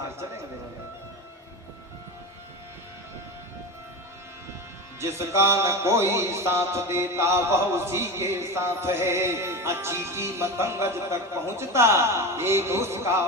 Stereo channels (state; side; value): normal; both; correlation 0.24